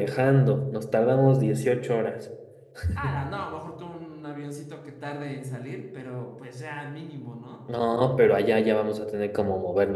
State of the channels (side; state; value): both; identical; correlation 1.00